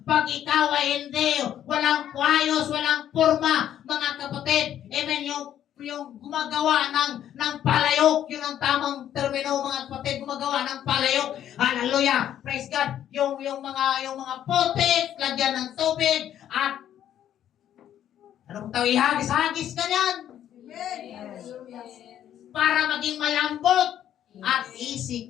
Pag ikaw ay hindi, walang kwayos, walang purma, mga kapatid, amen, yung gumagawa ng palayok, yun ang tamang termino, mga kapatid, gumagawa ng palayok. Hallelujah! Praise God! Yung mga putik, lagyan ng tubig, at anong tawag, ihagis-hagis ka yan para maging malambot at easy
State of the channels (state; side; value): quieter; right; 10.8 dB